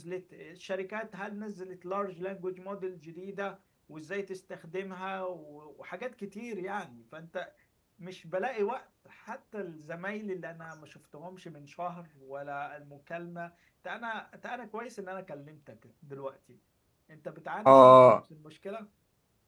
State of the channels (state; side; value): identical; both; correlation 1.00